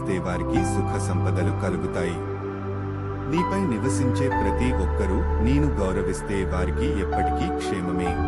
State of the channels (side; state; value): both; identical; correlation 1.00